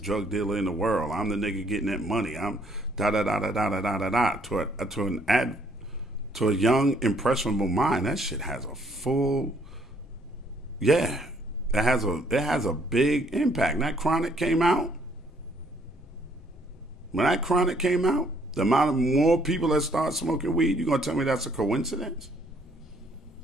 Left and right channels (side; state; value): both; normal; correlation 0.65